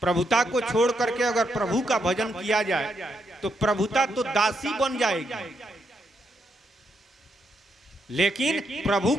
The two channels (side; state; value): both; normal; correlation 0.80